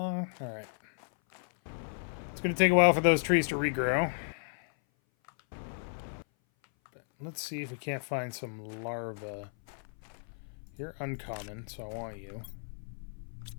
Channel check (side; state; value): right; silent; 55 dB below the other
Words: right. It's going to take a while for those trees to regrow. But let's see if we can't find some larvae. You're uncommon, so I want you.